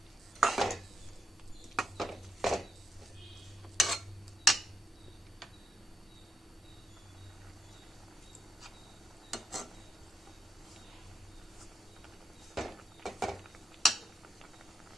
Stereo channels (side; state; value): both; normal; correlation 0.78